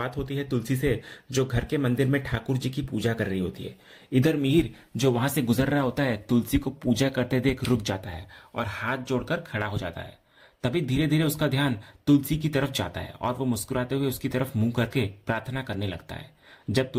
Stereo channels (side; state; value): both; identical; correlation 1.00